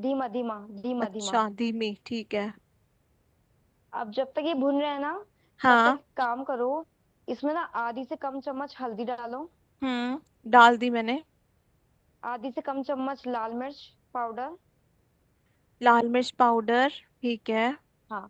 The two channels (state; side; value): identical; both; correlation 1.00